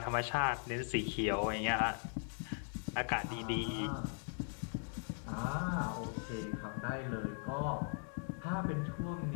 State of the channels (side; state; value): right; silent; 52 dB below the other